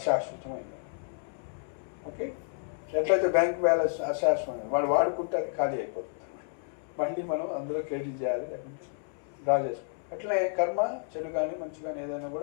ఓకే. ఎట్లయితే బ్యాంక్ బ్యాలెన్స్ అశాశ్వతమైన వాడు వాడుకుంటే అది ఖాళీ అయిపోతుంది, మళ్ళీ మనం అందులో క్రెడిట్ చేయాలి, లేకుంటే డ్రా చేసుకోవాలి. అట్లనే కర్మ, చెడు కానీ మంచి కానీ ఏదైనా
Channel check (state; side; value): silent; right; 56 dB below the other